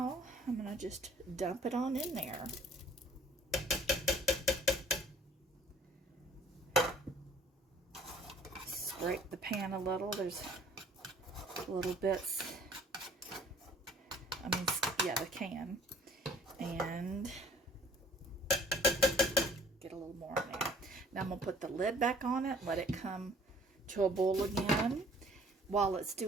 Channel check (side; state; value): both; normal; correlation 0.55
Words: I'm gonna just dump it on in there. Scrape the pan a little. There's little bits. The can. And get a little more in there. Now I'm going to put the lid back on it, let it come to a boil again. While it's